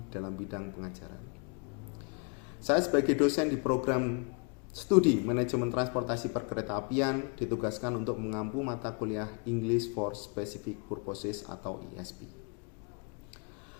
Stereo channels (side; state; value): right; quieter; 36.0 dB